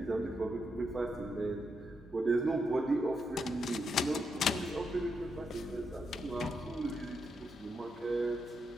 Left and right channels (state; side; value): normal; both; correlation 0.82